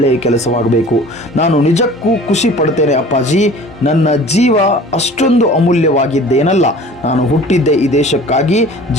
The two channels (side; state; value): both; normal; correlation 0.45